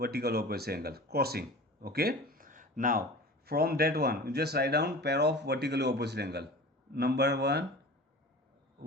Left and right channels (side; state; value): both; normal; correlation 0.38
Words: opposite angle crossing. Okay, now from that one you just write down pair of vertically opposite angle. Number 1,